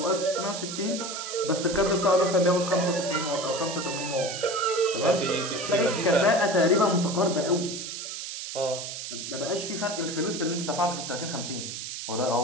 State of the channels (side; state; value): right; noise; hiss, 7 dB below the sound